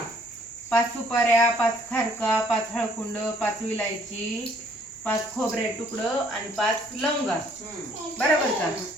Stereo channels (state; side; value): normal; both; correlation 0.62